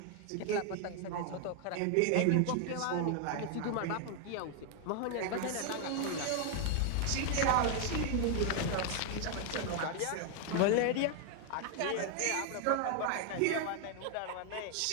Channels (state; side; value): different; both; correlation 0.00